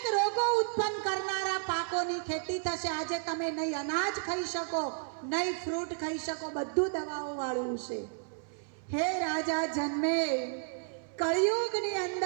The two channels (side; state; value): left; silent; 56 dB below the other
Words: રોગો ઉત્પન્ન કરનારા પાકોની ખેતી થશે. આજે તમે નહીં અનાજ ખાઈ શકો, નહીં ફ્રૂટ ખાઈ શકો, બધું દવાઓ વાળું છે. હે રાજા જન્મે, કળિયુગની